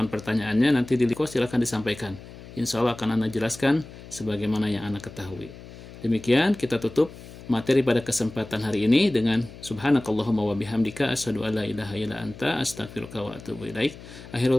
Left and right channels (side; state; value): left; noise; hum, 16 dB below the sound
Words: pertanyaannya. Nanti di liko silakan disampaikan. Insya Allah akan ana jelaskan sebagaimana yang ana ketahui. Demikian kita tutup materi pada kesempatan hari ini dengan subhanakallahumma wa bihamdika asyhadu an la ilaha illa anta astaghfiruka wa atubu ilaik.